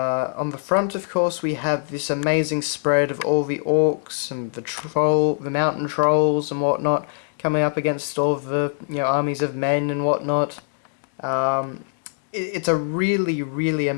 the front, of course, we have this amazing spread of all the orcs and the mountain trolls and whatnot, coming up against all the armies of men and whatnot. It's a really, really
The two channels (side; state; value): right; silent; digital silence